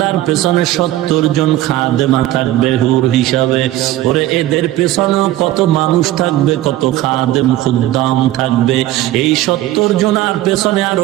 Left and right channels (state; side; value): quieter; left; 15.0 dB